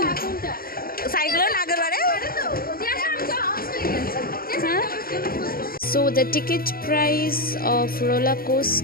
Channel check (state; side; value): late; right; 0.43 ms